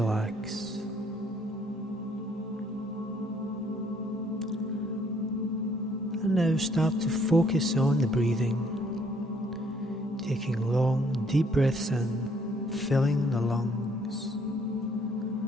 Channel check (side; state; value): both; normal; correlation 0.65